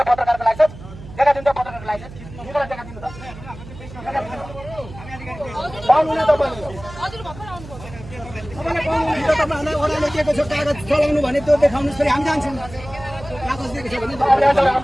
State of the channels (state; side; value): noise; right; hum, 15 dB below the sound